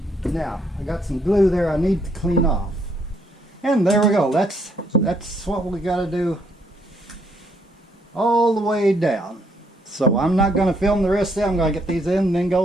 Now I got some glue there I need to clean off, and there we go. That's what we got to do all the way down. So I'm not going to film the rest of it. I'm going to get these in and then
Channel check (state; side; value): normal; both; correlation 0.71